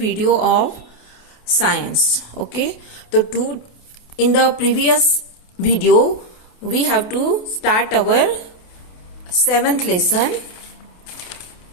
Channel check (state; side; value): late; right; 28 ms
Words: of science. Okay, so in the previous video we have to start our 7th lesson.